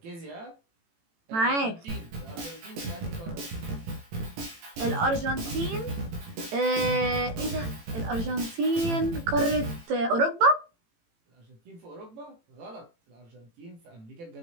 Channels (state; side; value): late; left; 18 ms